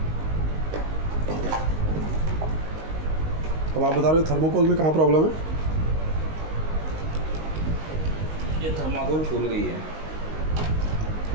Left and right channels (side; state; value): left; late; 19 ms